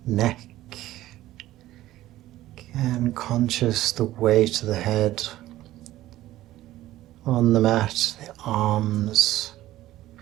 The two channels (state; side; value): quieter; left; 15.1 dB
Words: neck, again conscious the weight of the head on the mat, the arms,